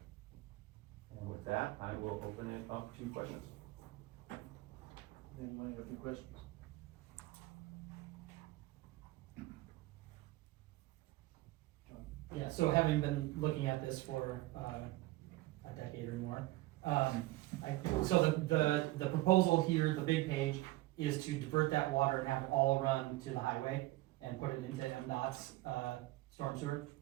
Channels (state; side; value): quieter; left; 18.5 dB